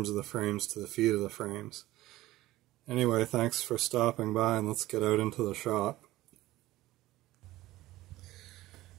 of the frames to the feet of the frames. Anyway, thanks for stopping by, and let's get out into the shop.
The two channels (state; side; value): quieter; left; 16.9 dB